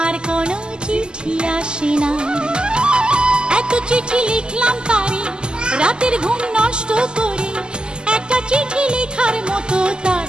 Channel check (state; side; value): late; left; 0.047 ms